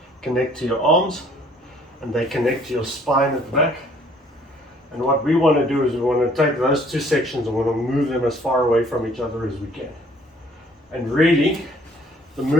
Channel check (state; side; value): normal; both; correlation 0.59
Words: connect to your arms and they connect to your spine at the back. And what we want to do is we want to take those two sections and we want to move them as far away from each other as we can. And really, the